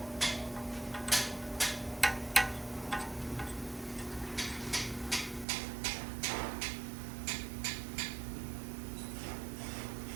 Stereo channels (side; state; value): left; drops out; at 5.5 s